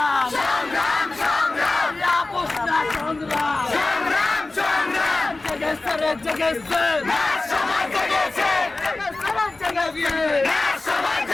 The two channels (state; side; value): quieter; right; 3.2 dB